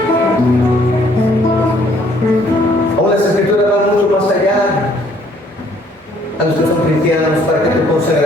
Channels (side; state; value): both; normal; correlation 0.63